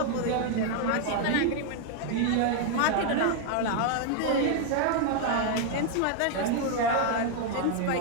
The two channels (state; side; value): different; both; correlation 0.00